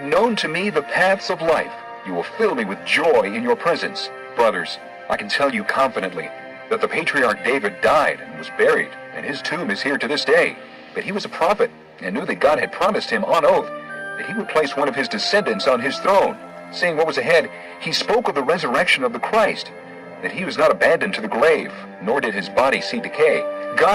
known to me the paths of life. You will fill me with joy in your presence. Brothers, I can tell you confidently that the patriarch David died and was buried, and his tomb is here to this day. But he was a prophet, and knew that God had promised him on oath that he would place one of his descendants on his throne. Seeing what was ahead, he spoke of the resurrection of the Christ, that he was not abandoned to the grave, nor did his body see decay.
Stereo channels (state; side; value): identical; both; correlation 1.00